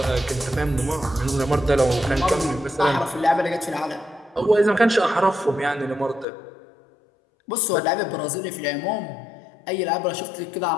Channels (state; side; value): drops out; right; at 6.2 s